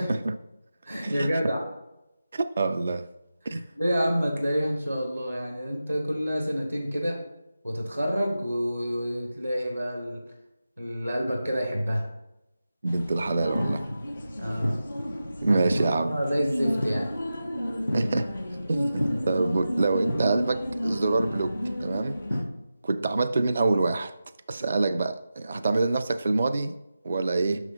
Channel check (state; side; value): inverted; both; correlation -0.92